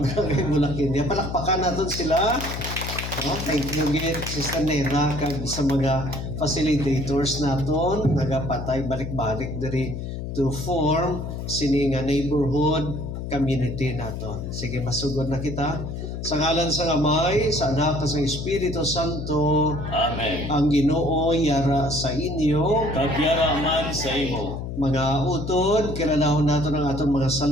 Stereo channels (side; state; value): left; noise; hum, 6 dB below the sound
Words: Mulakinya. Palakpakan natin sila. No? Thank you gid Sister Nena kag sa mga facilitators naton nagapatay balik-balik diri to form sini nga neighborhood community naton. Sige, masugod na kita. Sa ngalan sa Amay, sa Anak, sa Espiritu Santo. Amen. Ang Ginoo yara sa inyo. Kagyara man sa imo. Mga utod, kilalahon nato ng aton mga